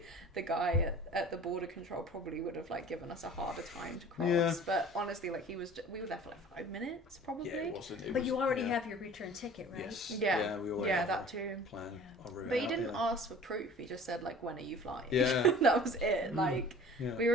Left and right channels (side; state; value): both; normal; correlation 0.45